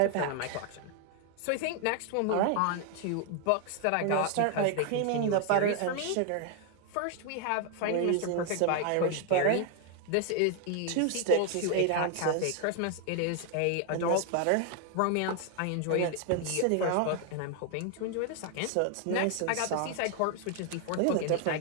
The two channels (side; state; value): both; different; correlation 0.00